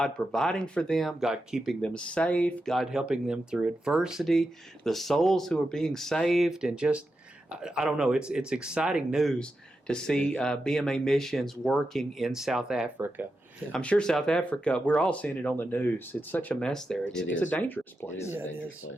providing for them, God keeping them safe, God helping them through adversity, the souls who are being saved, and just, I don't know, it's exciting news to see BMA missions working in South Africa. Yeah. I'm sure South Africa, we're all seeing it on the news. It's such a mess there. It's a dangerous place. It is a dangerous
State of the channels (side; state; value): both; normal; correlation 0.89